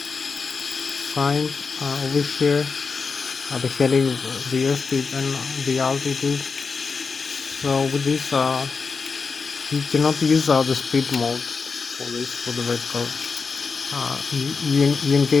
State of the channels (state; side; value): quieter; right; 4.9 dB